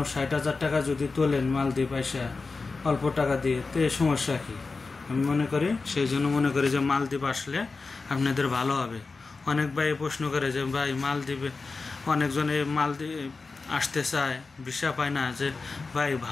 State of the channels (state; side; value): quieter; right; 4.1 dB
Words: 60,000 টাকা যদি তোলেন মালদ্বীপ আসা অল্প টাকা দিয়ে, তো এই সমস্যা কি? আমি মনে করি সেই জন্য মনে করি যে মালদ্বীপ আসলে আপনাদের ভালো হবে। অনেক ভাই প্রশ্ন করে যে ভাই মালদ্বীপে, অনেকজন এই মালদ্বীপ আসতে চায়, ভিসা পায় না, যে ভাই